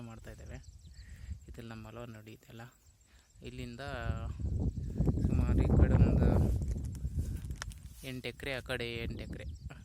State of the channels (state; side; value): identical; both; correlation 1.00